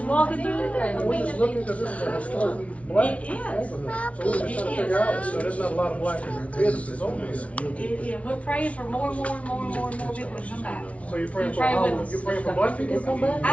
walking through the day. We're just looking because this is a historically black It is. neighborhood. So we're just trying to figure out, so there's not a lot of black businesses over here. Yeah, we're praying for more people to come back. So you're praying for Pray all with of us. them? You're praying for black people to come back?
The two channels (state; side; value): late; right; 0.064 ms